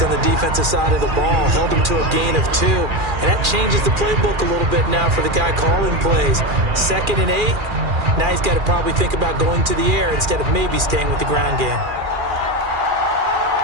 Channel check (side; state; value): left; late; 2.4 ms